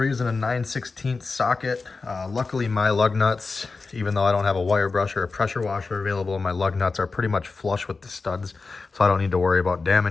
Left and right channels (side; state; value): right; quieter; 4.1 dB